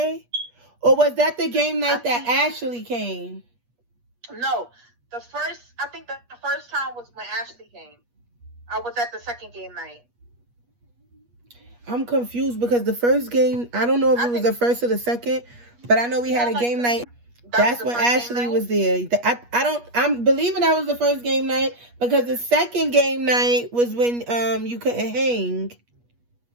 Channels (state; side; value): late; left; 8.3 ms